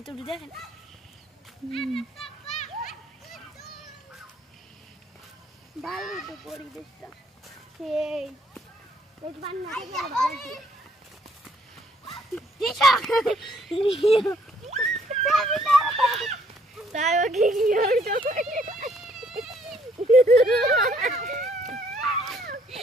দেখেন ভালো তো পরিবেশটা সেই এই বান্না থেকে ভালো দিশা তাই ও কি হইতো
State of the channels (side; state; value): both; normal; correlation 0.66